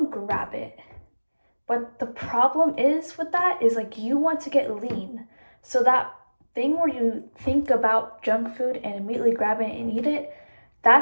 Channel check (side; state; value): both; inverted; correlation -1.00